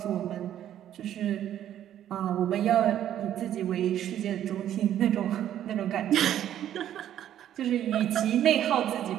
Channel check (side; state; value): left; quieter; 11.1 dB